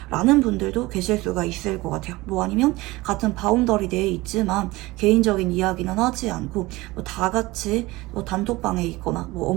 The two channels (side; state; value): left; quieter; 20.5 dB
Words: 라는 분들도 계실 수가 있을 것 같아요. 뭐 아니면 같은 바운더리 내에 있지만 개인적인 이야기는 하지 않고 뭐 다 같이 뭐 단톡방에 있거나 뭐